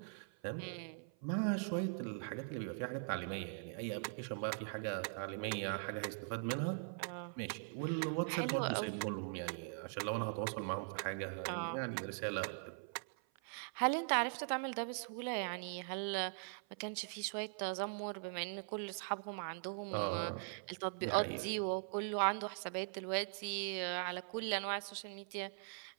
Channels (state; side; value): silent; left; 50 dB below the other